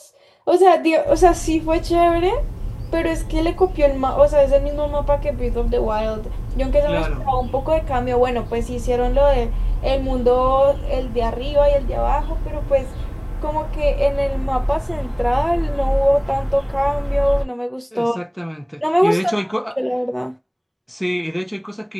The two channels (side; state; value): both; identical; correlation 1.00